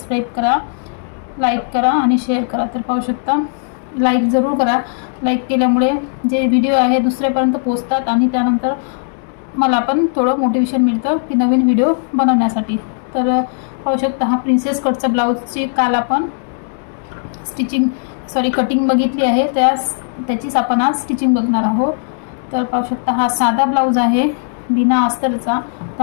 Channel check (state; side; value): silent; right; digital silence